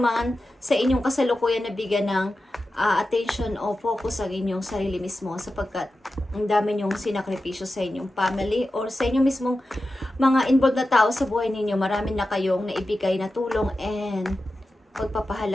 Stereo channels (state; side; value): normal; both; correlation 0.92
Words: sa inyong kasalukuyan na bigyan ng attention o focus ang inyong sarili mismo sapagkat ang dami nyong sinakripisyo sa inyong family or sa inyong mismong mga involved na tao sa buhay ninyo. Marami na kayong naibigay na tulong and